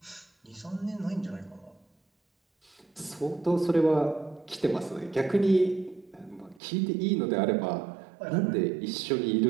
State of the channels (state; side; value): drops out; left; at 6.6 s